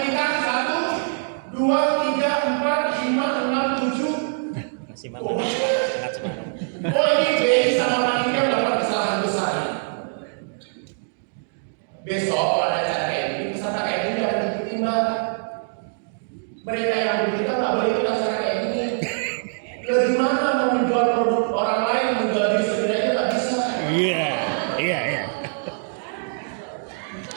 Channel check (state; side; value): silent; left; digital silence